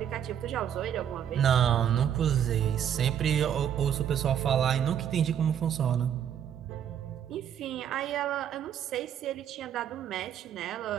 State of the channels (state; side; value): quieter; left; 9.3 dB